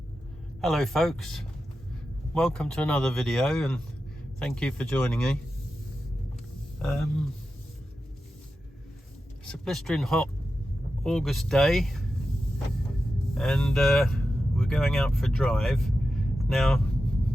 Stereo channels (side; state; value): both; normal; correlation 0.91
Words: Hello folks, welcome to another video and thank you for joining me. It's a blistering hot August day and we're going out for a drive. Now